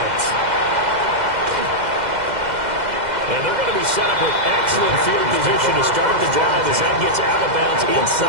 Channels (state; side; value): late; left; 2.0 ms